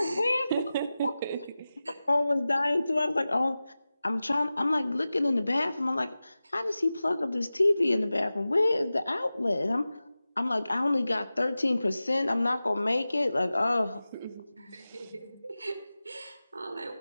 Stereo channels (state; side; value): inverted; both; correlation -0.96